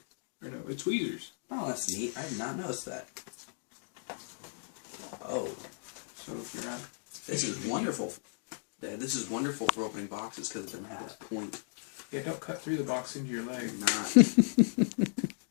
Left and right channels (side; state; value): right; silent; 55 dB below the other